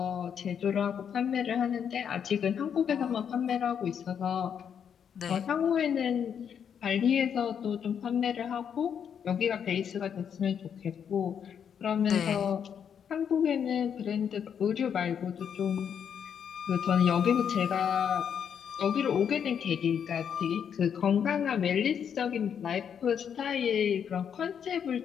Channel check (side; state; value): right; quieter; 7.9 dB